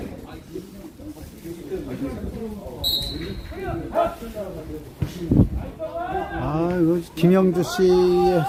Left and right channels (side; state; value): both; identical; correlation 1.00